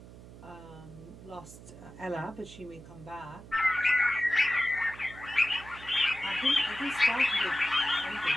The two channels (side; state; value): right; noise; hum, 17 dB below the sound